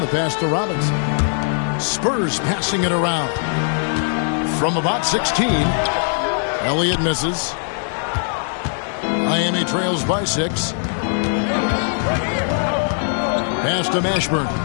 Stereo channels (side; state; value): right; silent; digital silence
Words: the pass to Robinson. Spurs passing it around. From about 16, Elliott misses. Miami trails by 6. Pass to Mashburn.